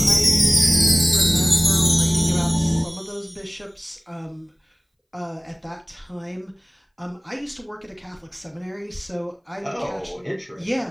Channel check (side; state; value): both; identical; correlation 1.00